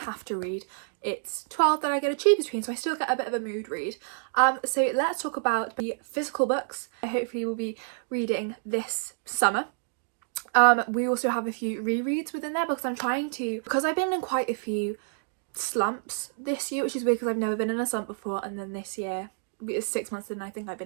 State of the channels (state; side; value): silent; left; digital silence